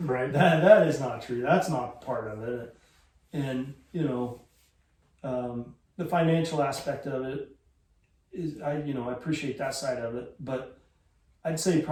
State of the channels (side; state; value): both; identical; correlation 1.00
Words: That is not true. That's not part of it. And, you know, the financial aspect of it is, I appreciate that side of it, but I'd say